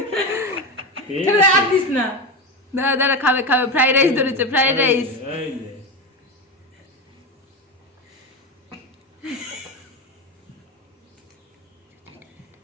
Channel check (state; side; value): normal; both; correlation 0.17